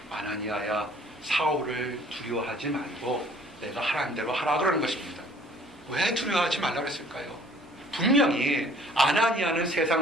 아나니아야 사울을 두려워하지 말고 내가 하라는 대로 하라 그러는 것입니다. 왜 두려워하지 말라고 그랬을까요? 분명히 아나니아는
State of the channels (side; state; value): both; normal; correlation 0.55